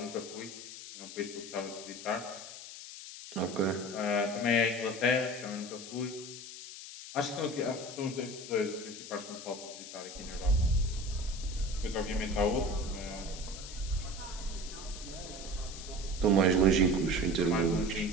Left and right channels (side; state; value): left; noise; hiss, 12 dB below the sound